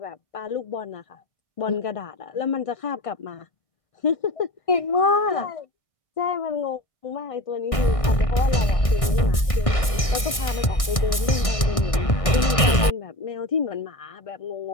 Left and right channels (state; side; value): late; right; 1.6 ms